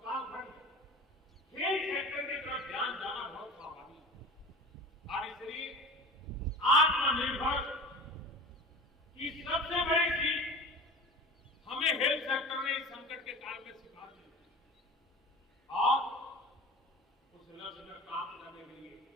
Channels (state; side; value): normal; both; correlation 0.36